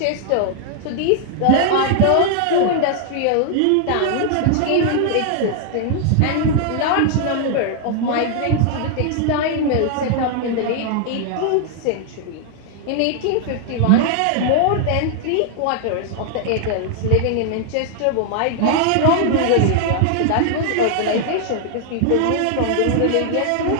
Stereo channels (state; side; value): different; both; correlation 0.00